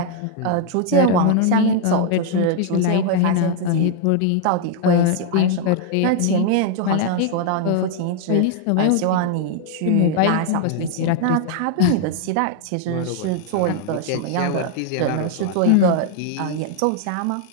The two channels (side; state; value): both; different; correlation 0.00